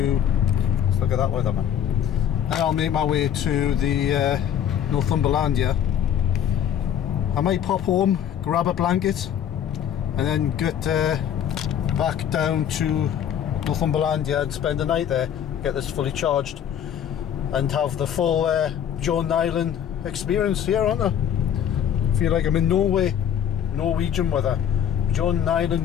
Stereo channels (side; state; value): right; quieter; 9.4 dB